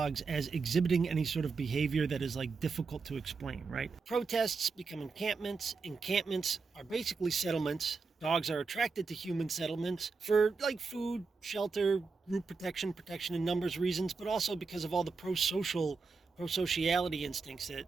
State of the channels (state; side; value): quieter; left; 4.6 dB